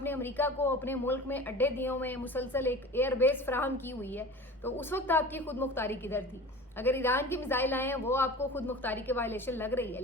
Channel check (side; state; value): both; normal; correlation 0.37